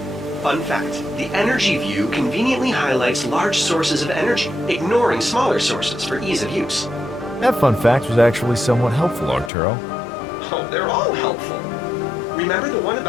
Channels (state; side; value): drops out; right; at 9.5 s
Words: Fun fact, the energy view conveniently highlights large sources of energy, ignoring smaller sources for ease of use. That fun fact was actually somewhat helpful, Arturo. Oh, they're all helpful. Remember the one